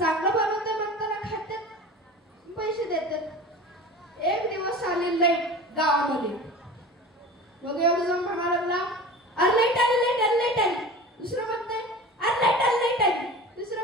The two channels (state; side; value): normal; both; correlation 0.36